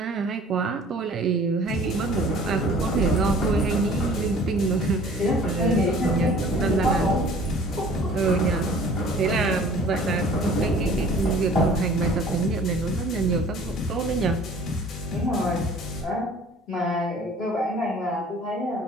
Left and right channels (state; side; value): normal; both; correlation 0.49